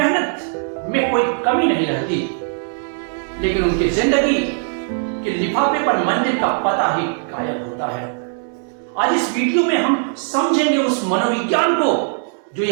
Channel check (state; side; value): silent; left; 66 dB below the other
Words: में कोई कमी नहीं रहती, लेकिन उनकी जिंदगी के लिफाफे पर मंजिल का पता ही गायब होता है। आज इस वीडियो में हम समझेंगे उस मनोविज्ञान को जो